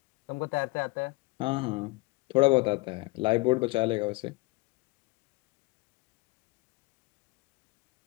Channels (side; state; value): right; quieter; 24.4 dB